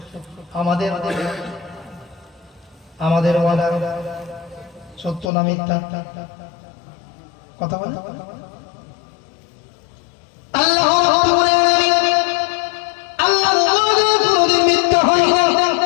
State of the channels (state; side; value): drops out; right; at 5.3 s